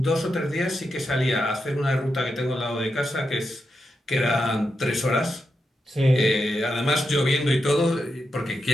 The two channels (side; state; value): both; normal; correlation 0.86